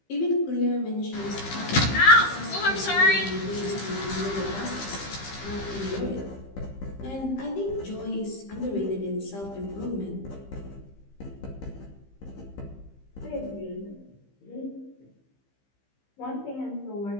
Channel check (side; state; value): right; late; 15 ms